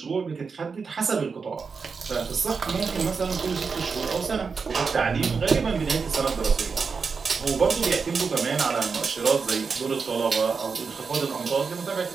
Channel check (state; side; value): quieter; left; 5.2 dB